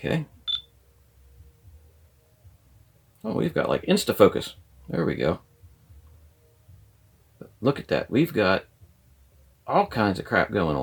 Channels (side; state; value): both; identical; correlation 1.00